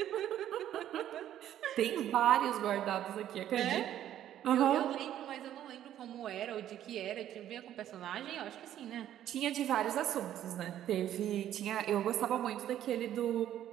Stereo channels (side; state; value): left; quieter; 11.5 dB